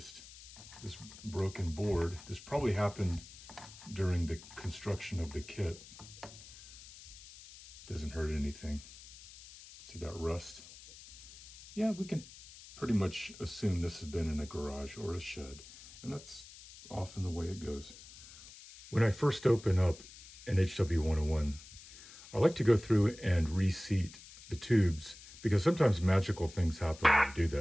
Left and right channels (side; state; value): left; noise; hiss, 18 dB below the sound